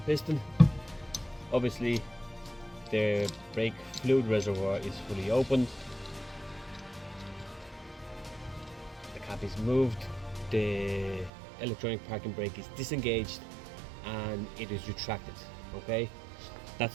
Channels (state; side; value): drops out; left; at 11.3 s